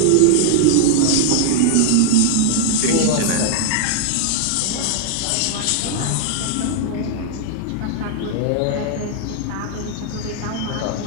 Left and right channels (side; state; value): both; different; correlation 0.00